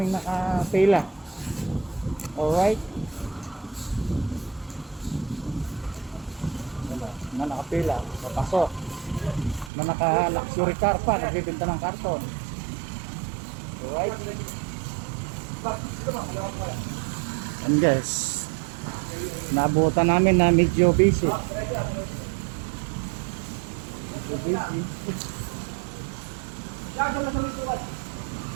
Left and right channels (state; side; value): drops out; left; at 9.7 s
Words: nakapila. Alright. Na nakapila, papasok. Na naka-luxury car pa, nagbibinta ng karton. Alright. And guys, nabutan namin na medyo busy.